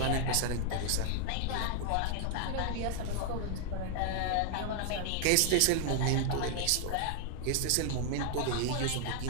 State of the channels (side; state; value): both; different; correlation 0.00